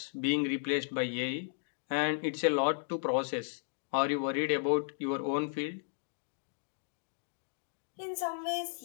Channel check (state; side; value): silent; right; digital silence